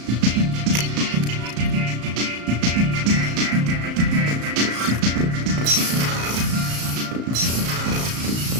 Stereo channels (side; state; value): left; late; 35 ms